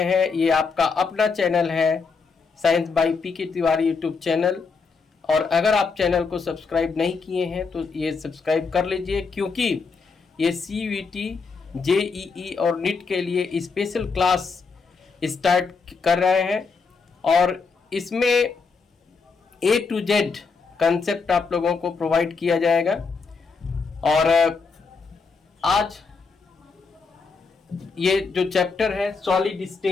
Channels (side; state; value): right; quieter; 4.8 dB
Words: हैं, ये आपका अपना चैनल है science by PK Tiwari YouTube channel. और अगर आप चैनल को सब्सक्राइब नहीं किए हैं तो ये सब्सक्राइब कर लीजिए, क्योंकि ये CUET, JEE और नीट के लिए स्पेशल क्लास स्टार्ट कर रहे हैं और इसमें A to Z कंसेप्ट आप लोगों को प्रोवाइड किया जाएगा। और आज ये जो चैप्टर है सॉलिड